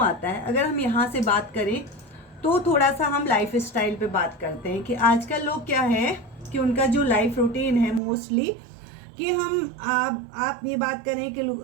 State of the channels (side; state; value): left; drops out; at 8.0 s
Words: आता है, अगर हम यहाँ से बात करें तो थोड़ा सा हम लाइफ स्टाइल पे बात करते हैं कि आजकल लोग क्या है कि उनका जो लाइफ रूटीन है मोस्टली कि हम आप ये बात करें कि